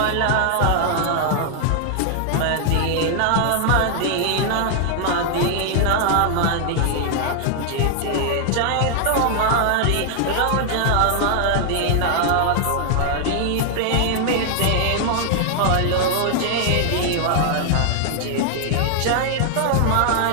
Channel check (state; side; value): different; both; correlation 0.00